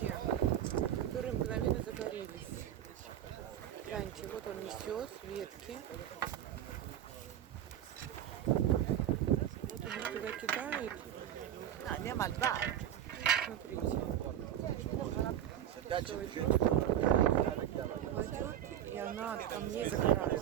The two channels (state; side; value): quieter; left; 10.8 dB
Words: которые мгновенно загорелись. Гляньте, вот он несет ветки. Вот он их туда кидает. Смотрите. Кладет, и она от камней